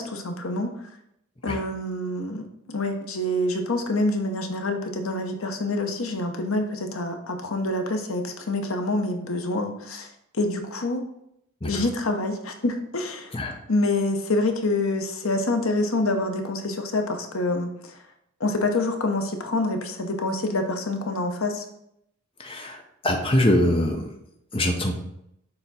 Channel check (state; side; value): normal; both; correlation 0.40